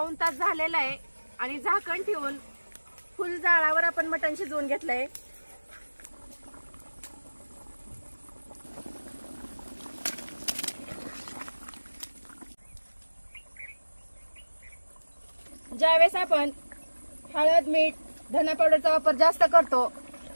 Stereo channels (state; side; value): inverted; both; correlation -1.00